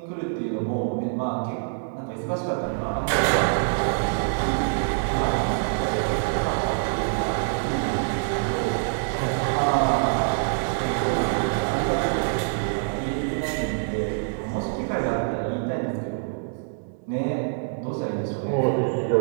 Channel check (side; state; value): left; silent; digital silence